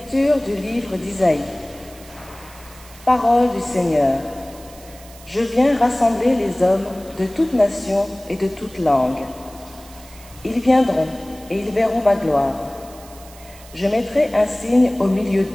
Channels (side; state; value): right; noise; hiss, 21 dB below the sound